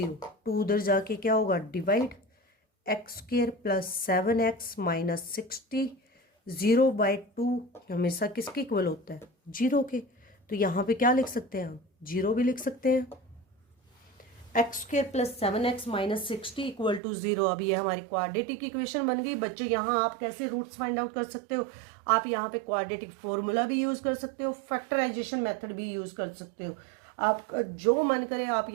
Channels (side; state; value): left; drops out; at 17.0 s